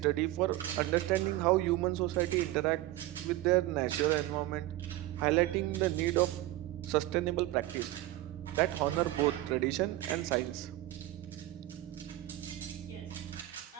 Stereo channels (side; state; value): left; quieter; 16.3 dB